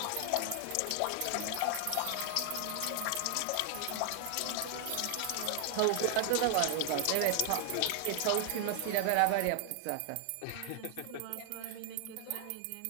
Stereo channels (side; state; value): both; different; correlation 0.00